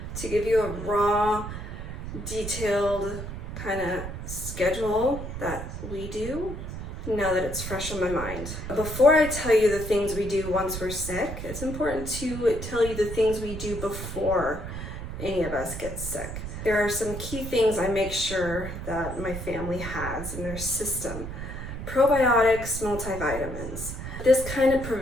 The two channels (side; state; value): right; noise; rumble, 7 dB below the sound